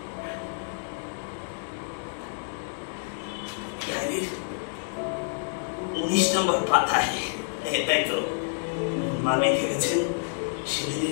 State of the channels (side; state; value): right; silent; digital silence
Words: ডায়েরির 19 নম্বর পাতায় তাই তো মা লিখে গেছেন